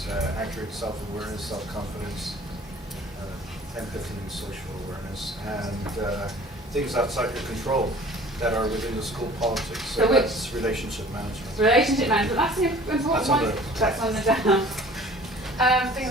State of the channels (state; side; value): normal; both; correlation 0.48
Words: accurate self-awareness, self-confidence, empathy and social awareness, and things outside your control that are within the school politics. So that's relationship management. Relationship management. That's an important That's on one. the- That's on the down. Things